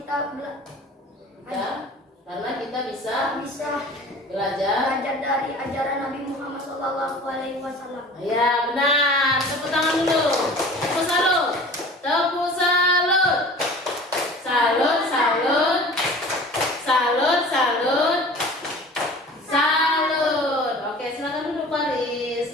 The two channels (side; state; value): both; normal; correlation 0.42